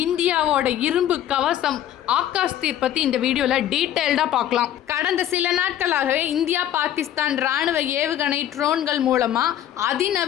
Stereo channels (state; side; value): quieter; right; 11.4 dB